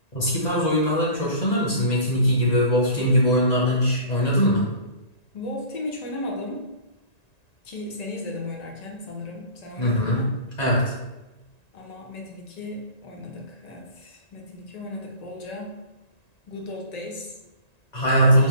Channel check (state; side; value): late; right; 1.9 ms